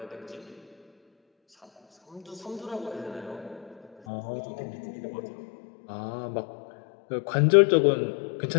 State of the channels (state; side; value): drops out; right; at 3.9 s